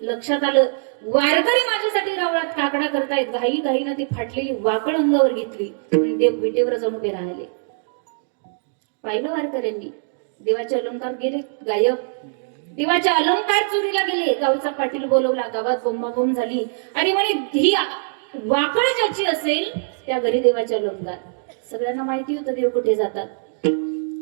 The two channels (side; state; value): left; silent; digital silence